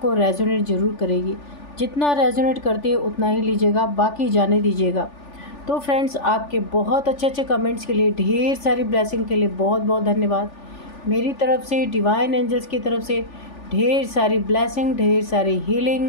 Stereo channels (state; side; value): late; right; 3.4 ms